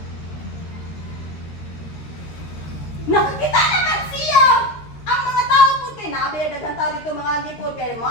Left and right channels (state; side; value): late; right; 13 ms